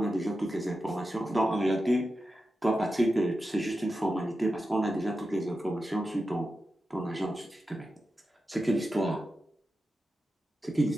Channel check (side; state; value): both; normal; correlation 0.91